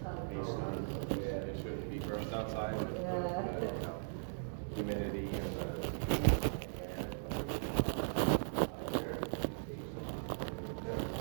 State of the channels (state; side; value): silent; left; 52 dB below the other